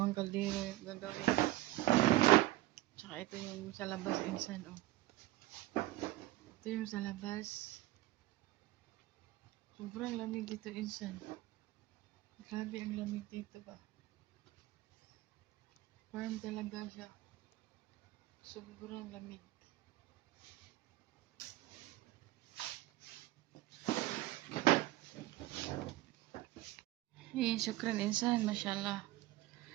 kaldero yung gagawin. Tsaka ito yung sa labas insan, oh. Ito yung sa labas. Sobrang lamig dito insan. Grabe ang lamig dito ba. Warm talaga siya. Sobrang lamig. Syukran insan, mashallah.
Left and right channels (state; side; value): quieter; left; 16.8 dB